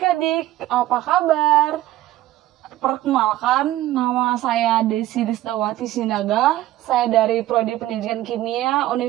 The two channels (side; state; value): left; quieter; 15.0 dB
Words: apa kabar? Perkenalkan, nama saya Desi Disdawati Sinaga. Saya dari Prodi Pendidikan Kimia